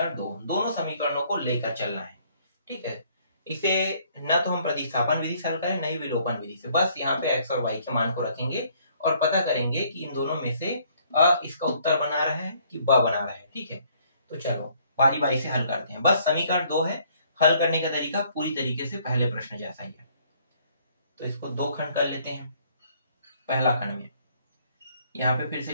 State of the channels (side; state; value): both; inverted; correlation -0.63